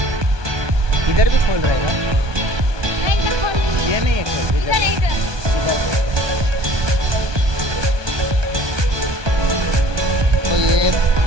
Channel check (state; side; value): late; left; 1.2 ms